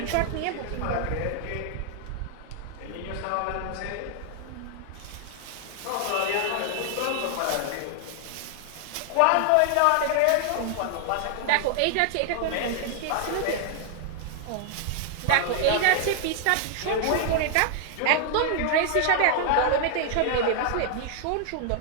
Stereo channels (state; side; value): different; both; correlation 0.00